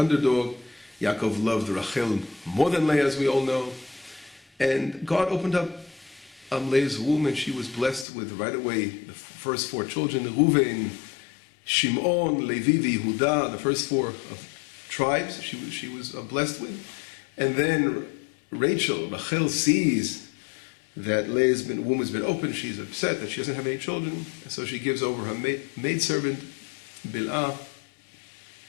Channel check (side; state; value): right; drops out; at 8.1 s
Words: Yaakov loved Rachel more than Leah, as we all know. And God opened up Leah's womb, and she was blessed with right away the first four children, Reuven, Shimon, Levi, Yehuda, the first four tribes she was blessed with. And then Rachel sees that Leah's womb has been opened. She's upset that she doesn't have any children, and so she gives over her maidservant, Bilhah,